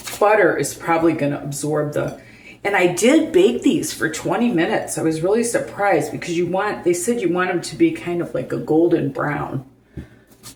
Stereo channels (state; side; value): identical; both; correlation 1.00